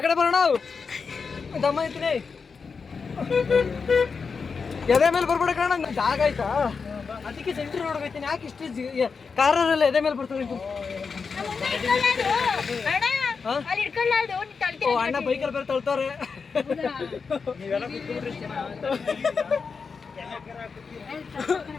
ಬರೋಣ. ದಮ್ಮ ಐತೀನಿ ಎದೆ ಮೇಲೆ ಬರ್ಬೇಡ ಕಣ. ಜಾಗ ಆಯ್ತಾ ಅದಕ್ಕೆ ಸೆಂಟ್ರ್ ರೋಡ್ ಹೋಗ್ತೀನಿ. ಯಾಕೆ ಇಷ್ಟು ಕಾರಲ್ಲ ಎದೆ ಮೇಲೆ ಬರ್ತದೆ. ಓ ಅಣ್ಣ ಬೈಕಲ್ಲಿ ಬೇರೆ ತಳ್ತಾರೆ.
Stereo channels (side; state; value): right; quieter; 5.2 dB